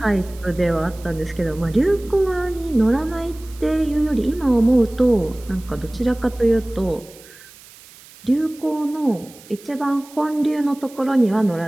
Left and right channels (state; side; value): noise; right; hiss, 22 dB below the sound